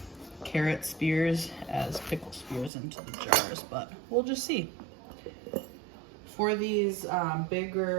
carrot spears as pickle spears into the jars, but we'll just see. For these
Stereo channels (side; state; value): left; drops out; at 2.7 s